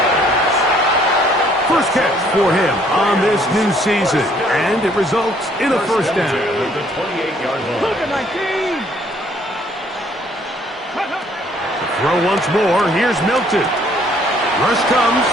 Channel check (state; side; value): normal; both; correlation 0.63